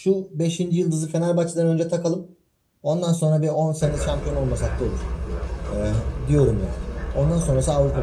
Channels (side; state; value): both; identical; correlation 1.00